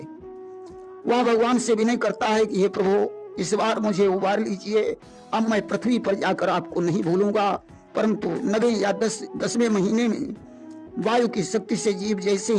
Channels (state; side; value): identical; both; correlation 1.00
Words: वह भगवान से विनय करता है कि हे प्रभु, इस बार मुझे उबार लीजिए। अब मैं पृथ्वी पर जाकर आपको नहीं भूलूंगा। परंतु 9वें या 10वें महीने में वायु की शक्ति से जीव जैसे